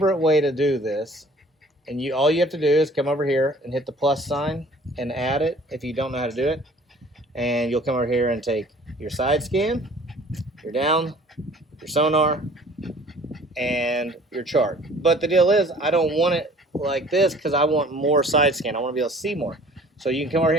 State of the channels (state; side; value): normal; both; correlation 0.51